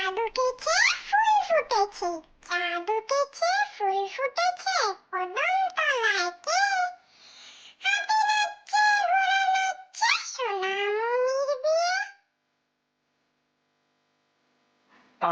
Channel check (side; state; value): both; identical; correlation 1.00